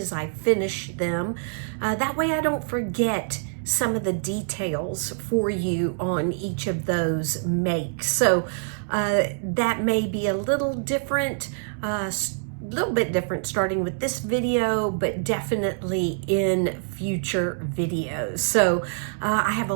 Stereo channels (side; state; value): left; silent; 62 dB below the other